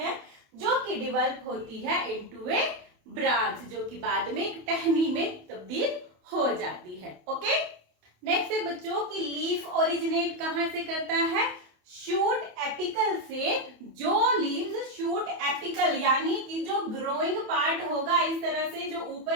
जो कि डेवलप होती है इनटू ए ब्रांच, जो कि बाद में एक टहनी में तब्दील हो जाती है, ओके। नेक्स्ट है बच्चों की लीफ ओरिजिनेट कहां से करता है, शूट एपिकल से। जो लीव्स शूट एपिकल यानी कि जो ग्रोइंग पार्ट होगा इस तरह से, जो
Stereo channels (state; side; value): late; left; 28 ms